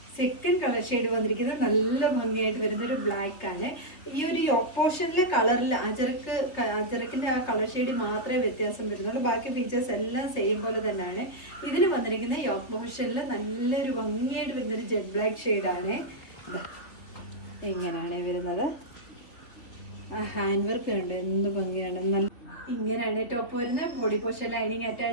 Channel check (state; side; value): late; right; 3.2 ms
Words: സെക്കൻഡ് കളർ ഷെയ്ഡ് വന്നിരിക്കുന്നത് നല്ല ഭംഗിയായിട്ട് വരുന്ന ഒരു ബ്ലാക്ക് ആണ്. ഈ ഒരു യോക്ക് പോർഷനിലെ കളറിൽ അജറക്കിന്റെ ആ കളർ ഷെയ്ഡ് മാത്രമേ വ്യത്യാസം വരുന്നുള്ളൂ. ബാക്കി ഫീച്ചേഴ്സ് എല്ലാം സെയിം പോലെ തന്നെയാണ്. ഇതിന് വന്നിരിക്കുന്ന യോക്ക് പോർഷനിൽ നല്ലൊരു ഭംഗിയായിട്ട് വരുന്നൊരു ജെറ്റ് ബ്ലാക്ക് ഷെയ്ഡാണ്. ഇങ്ങനെയാണ് വരുന്നത്. ആ ഹാൻഡ് വർക്ക് ഉണ്ട്, എന്ത് ഭംഗിയാണ്. നല്ല ഇങ്ങനെയാണ് ടോപ്പ് വരുന്നത്. ബോഡി പോർഷൻ ലൈനിങ്